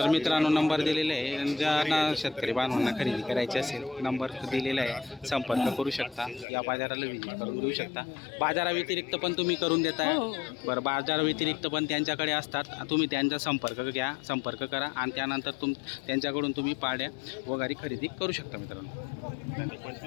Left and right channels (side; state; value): right; drops out; at 6.5 s